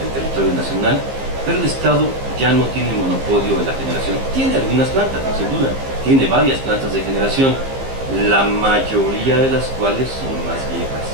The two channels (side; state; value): left; late; 15 ms